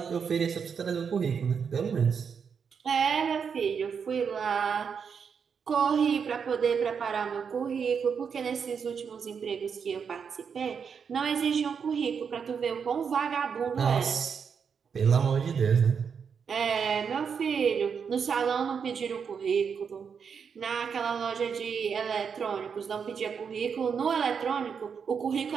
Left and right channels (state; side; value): quieter; left; 6.5 dB